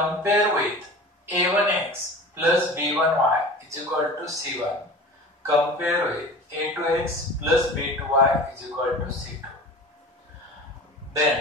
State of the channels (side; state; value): both; normal; correlation 0.37